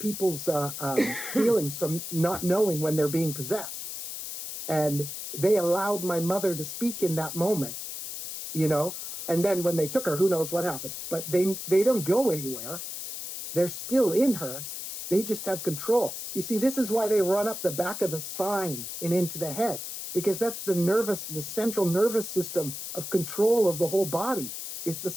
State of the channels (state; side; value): noise; left; hiss, 7 dB below the sound